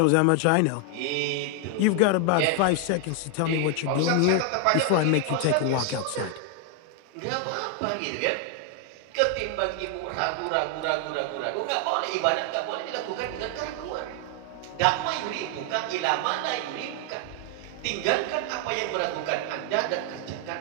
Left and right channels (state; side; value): different; both; correlation 0.00